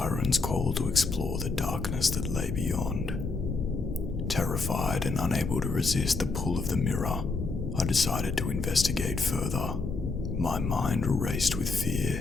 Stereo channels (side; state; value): right; quieter; 3.9 dB